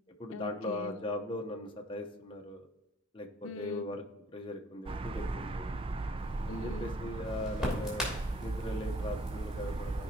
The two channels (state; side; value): normal; both; correlation 0.57